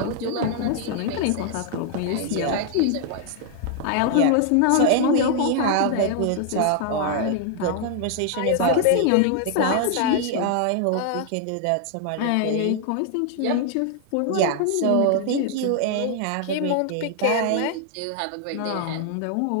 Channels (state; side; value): different; both; correlation 0.00